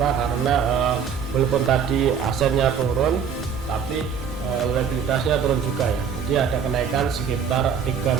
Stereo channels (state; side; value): quieter; left; 7.0 dB